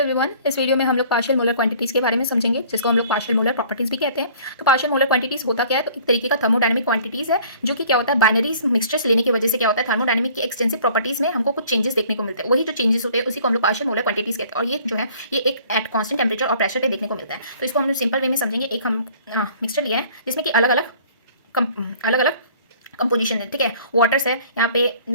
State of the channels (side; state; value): both; inverted; correlation -0.52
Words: इस video में हम लोग पार्शियल मोलर क्वांटिटीज़ के बारे में समझेंगे, जिसको हम लोग पार्शियल मोलर प्रॉपर्टीज़ भी कहते हैं। तो पार्शियल मोलर क्वांटिटीज़ होता क्या है? तो एक तरीके का थर्मोडायनेमिक क्वांटिटीज़ है, जो कि क्या होता है, बाइनरी मिक्सचर्स लेने की वजह से क्या होता है, थर्मोडायनेमिक की एक्सटेंसिव प्रॉपर्टीज़ में हमको कुछ चेंजेस देखने को मिलते हैं। वही जो चेंजेस होते हैं उसी को हम लोग पार्शियल मोलर क्वांटिटीज़ कहते हैं। और ये जो है ये एक एट कॉन्स्टेंट टेम्परेचर और प्रेशर पे देखने को मिलता है। तो इसको हम लोग सिंपल वे में समझेंगे। एक हम मिक्सचर लिया है जिसमें कि अलग अलग कंपोजिशन है, ठीक है। वाटर्स है, यहाँ पे